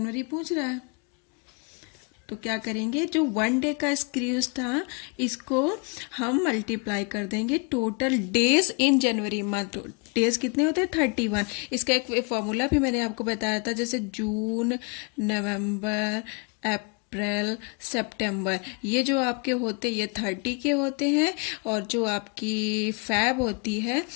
पूछ रहा है तो क्या करेंगे, जो 1 डे का स्क्रूज था इसको हम मल्टीप्लाई कर देंगे total days in January month. Days कितने होते हैं 31। इसका एक फॉर्मूला भी मैंने आपको बताया था, जैसे जून, नवंबर, अप्रैल, सितंबर, ये जो आपके होते ये 30 के होते हैं और जो आपकी फैब होती है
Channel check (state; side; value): quieter; right; 33.5 dB